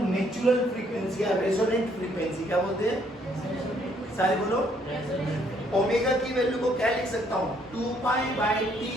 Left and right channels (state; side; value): normal; both; correlation 0.67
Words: नेचुरल फ्रीक्वेंसी या रेजोनेंट फ्रीक्वेंसी। क्या बोलते हैं? सारे बोलो। ओमेगा की वैल्यू को क्या लिख सकता हूँ 2 पाई बाई टी,